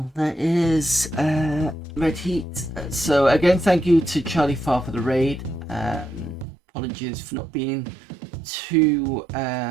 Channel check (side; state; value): left; drops out; at 6.5 s